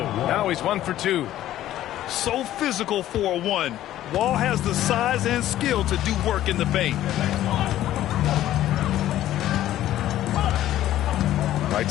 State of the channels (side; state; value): right; quieter; 13.3 dB